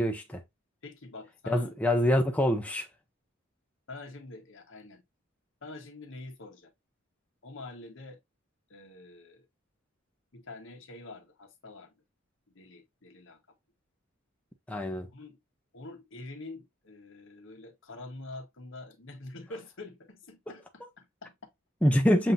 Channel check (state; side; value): normal; both; correlation 0.82